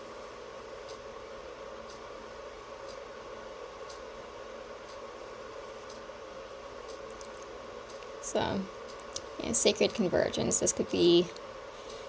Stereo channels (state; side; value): identical; both; correlation 1.00